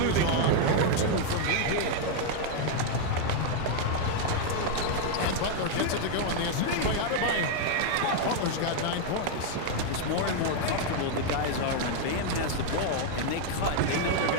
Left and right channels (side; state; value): both; different; correlation 0.00